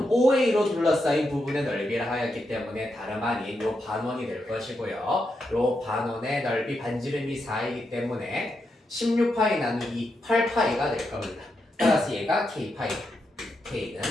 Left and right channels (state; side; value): normal; both; correlation 0.84